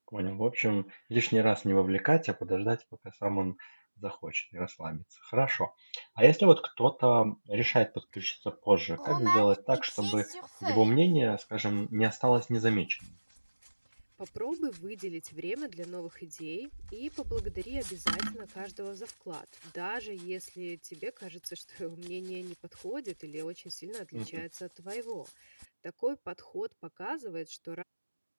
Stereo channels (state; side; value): inverted; both; correlation -1.00